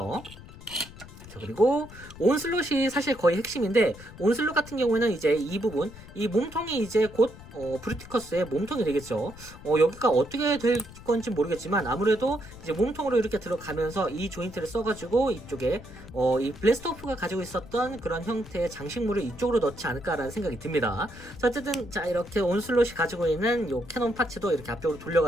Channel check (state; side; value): noise; left; rumble, 17 dB below the sound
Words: 자, 그리고 온슬롯이 사실 거의 핵심인데, 온슬롯 같은 경우에는 이제 이 부분, 이 몸통이 이제 곧 브루티커스의 몸통이 되겠죠. 여기가 어떻게 될 건지 모르겠지만 아무래도 이제 몸통으로 이렇게 들어가면서 이 조인트를 써가지고 이쪽에 이 블래스트오프가 가지고 있었던 그런 형태의 장식물을 이쪽으로 넣지 않을까라는 생각이 듭니다. 자, 어쨌든 자 이렇게 온슬롯이 가지고 있는 요 캐논 파츠도 이렇게 앞쪽으로